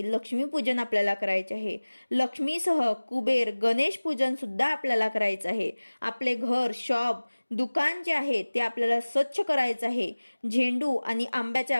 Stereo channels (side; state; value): both; inverted; correlation -1.00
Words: लक्ष्मीपूजन आपल्याला करायचे आहे। लक्ष्मीसह कुबेर गणेश पूजन सुद्धा आपल्याला करायचं आहे। आपले घर, शॉप, दुकान जे आहे ते आपल्याला स्वच्छ करायचं आहे। झेंडू आणि